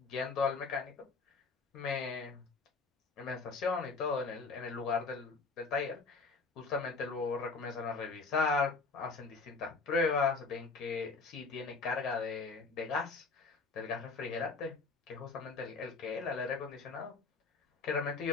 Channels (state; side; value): quieter; right; 4.3 dB